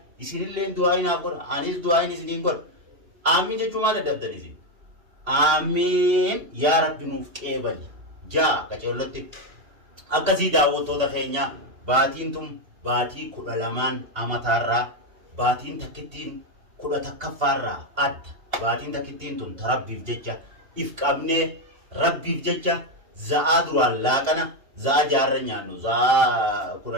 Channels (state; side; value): late; left; 2.8 ms